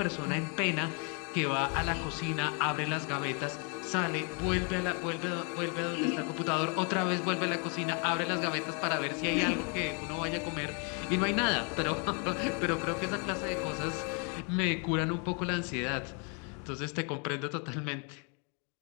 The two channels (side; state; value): right; quieter; 37.1 dB